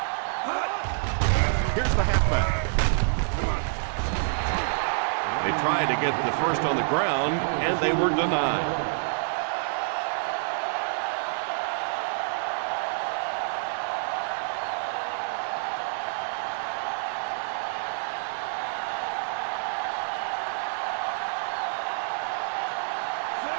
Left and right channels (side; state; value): left; silent; digital silence